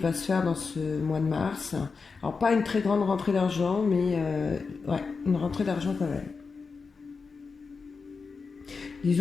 se faire dans ce mois de mars. Alors pas une très grande rentrée d'argent, mais ouais, une rentrée d'argent quand même.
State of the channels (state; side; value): quieter; right; 4.8 dB